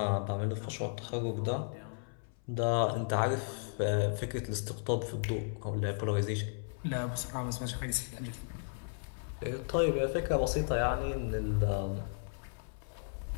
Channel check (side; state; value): right; silent; 55 dB below the other